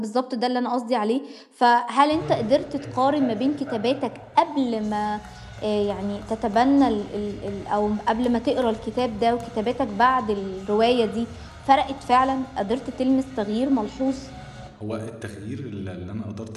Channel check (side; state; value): both; identical; correlation 1.00